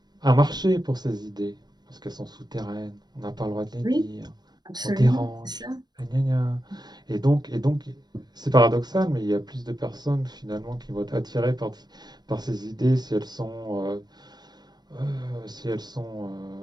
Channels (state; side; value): late; left; 0.20 ms